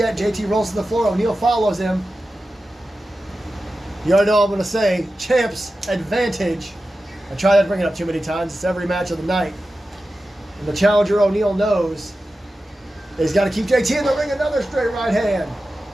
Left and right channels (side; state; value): both; normal; correlation 0.93